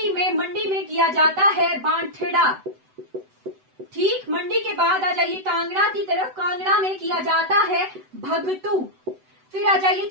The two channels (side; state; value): left; late; 7.9 ms